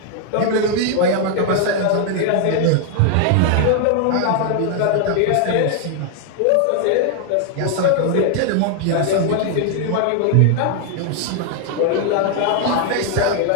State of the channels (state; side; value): different; both; correlation 0.00